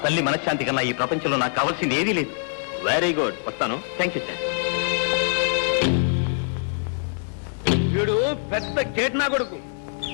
తల్లి మనశ్శాంతి కన్నా ఈ ప్రపంచంలో నాకు కావాల్సింది ఏదీ లేదు. Very good. వస్తాను. Thank you sir. వీడు పెద్ద కేట్నా కొడుకు.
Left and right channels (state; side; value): silent; right; digital silence